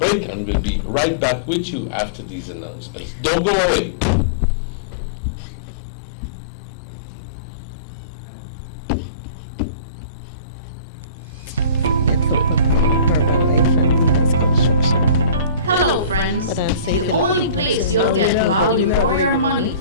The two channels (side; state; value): both; inverted; correlation -0.36